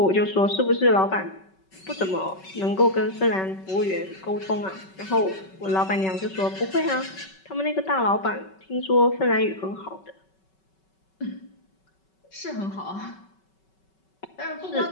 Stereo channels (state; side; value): late; right; 5.3 ms